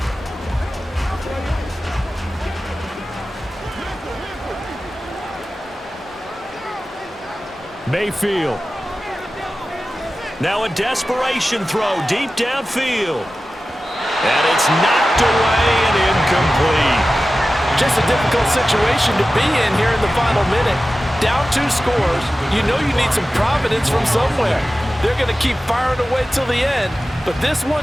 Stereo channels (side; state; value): both; normal; correlation 0.95